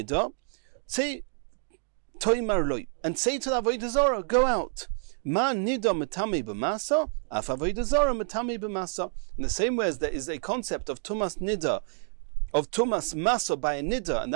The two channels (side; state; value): left; silent; 59 dB below the other